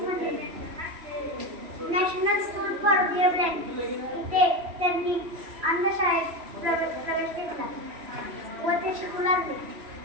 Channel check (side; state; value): left; late; 3.0 ms